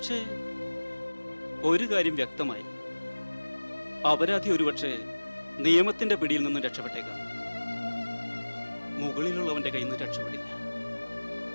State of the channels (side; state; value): both; inverted; correlation -1.00